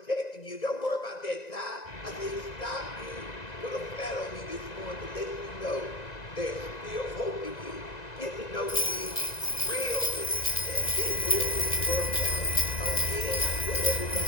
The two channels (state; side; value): late; right; 1.9 ms